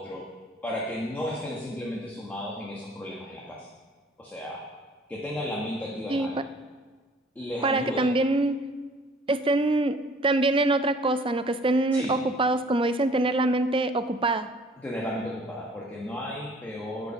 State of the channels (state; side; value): normal; both; correlation 0.54